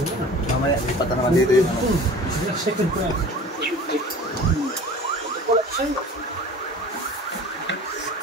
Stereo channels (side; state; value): both; normal; correlation 0.42